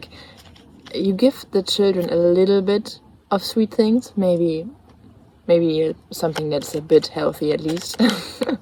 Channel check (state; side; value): identical; both; correlation 1.00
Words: you give the children a little bit of sweet things, maybe something that's a bit healthy at least.